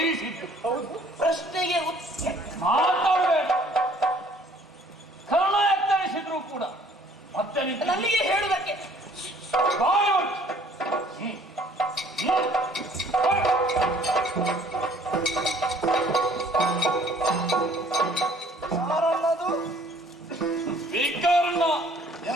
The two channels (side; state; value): both; normal; correlation 0.57